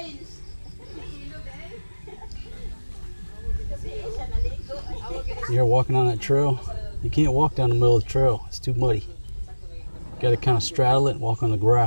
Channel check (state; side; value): inverted; both; correlation -1.00